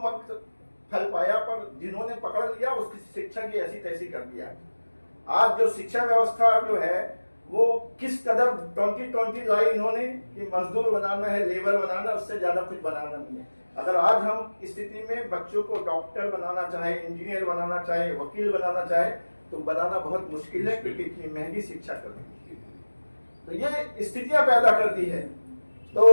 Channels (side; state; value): both; inverted; correlation -1.00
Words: फल पाया, पर जिन्होंने पकड़ लिया उसकी शिक्षा की ऐसी तैसी कर दिया। आज जो शिक्षा व्यवस्था जो है वो किस कदर 2020 लाई इन्होंने कि मजदूर बनाना है, लेबर बनाना, उससे ज्यादा कुछ बनाना नहीं है। अगर आज हम इस स्थिति में बच्चों को डॉक्टर बनाना चाहे, इंजीनियर बनाना चाहे, वकील बनाना चाहे, तो बनाना बहुत मुश्किल है क्योंकि इतनी महंगी शिक्षा करनी है। तो ये स्थितियां पैदा कर दी है। तो